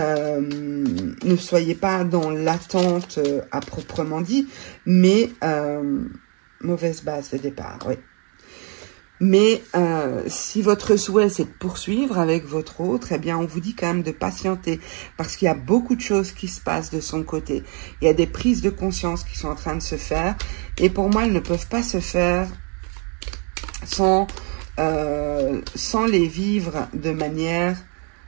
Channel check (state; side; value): quieter; left; 36.9 dB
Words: soyez pas dans l'attente à proprement dit, mais mauvaise base de départ, oui. Mais si votre souhait, c'est de poursuivre avec votre autre, eh bien, on vous dit quand même de patienter parce qu'il y a beaucoup de choses qui se passent de son côté. Il y a des prises de conscience qui sont en train de se faire et pour moi, elles ne peuvent pas se faire sans les vivre de manière,